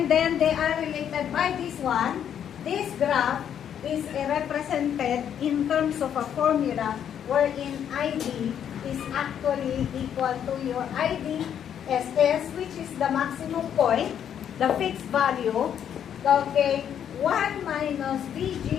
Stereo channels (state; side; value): quieter; right; 9.1 dB